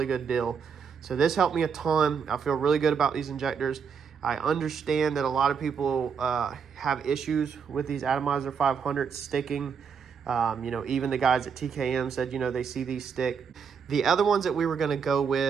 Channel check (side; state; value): left; quieter; 6.5 dB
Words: good deal. So this helped me a ton. I feel really good about these injectors. I understand that a lot of people have issues with these Atomizer 500s sticking. You know, even the guys at TKM said, you know, they see these stick. The other ones that we were going to go